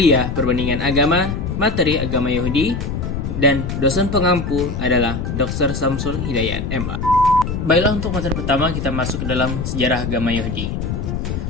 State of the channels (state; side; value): noise; left; rumble, 3 dB below the sound